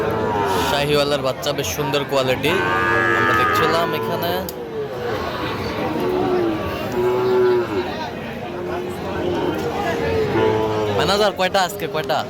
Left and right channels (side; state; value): both; identical; correlation 1.00